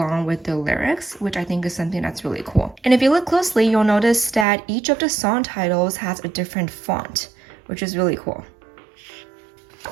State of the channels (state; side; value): drops out; left; at 4.5 s